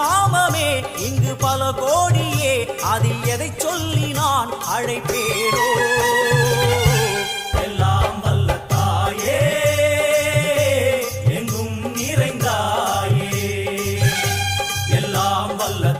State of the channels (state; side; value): identical; both; correlation 1.00